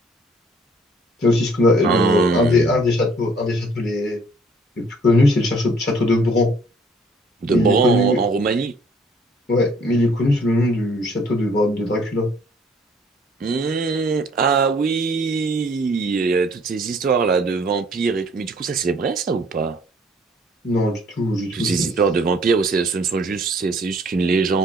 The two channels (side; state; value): both; normal; correlation 0.59